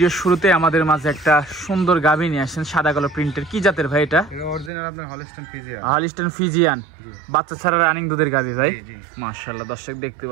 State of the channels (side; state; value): left; drops out; at 4.7 s